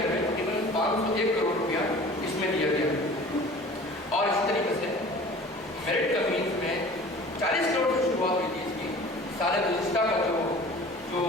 میں تقریباً 501 کروڑ روپیہ اس میں دیا گیا. اور اسی طریقے سے میرٹ کمپنیز میں 40 کروڑ سے شروعات ہوئی تھی اس کی. سارے گزشتہ کا جو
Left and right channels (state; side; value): normal; both; correlation 0.44